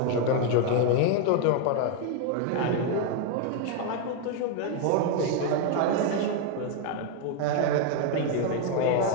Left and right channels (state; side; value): different; both; correlation 0.01